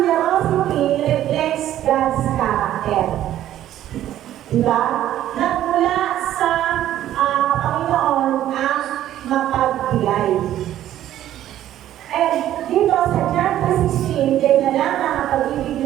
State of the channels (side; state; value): left; quieter; 12.4 dB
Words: reflects God's character. Diba? Nagmula sa Panginoon ang mapagbigay. And dito sa John 3:16, kaya na lang ang pag-ibig